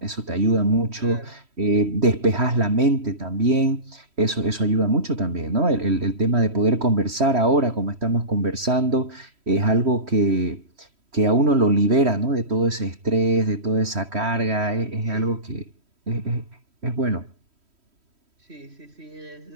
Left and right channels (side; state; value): left; late; 3.1 ms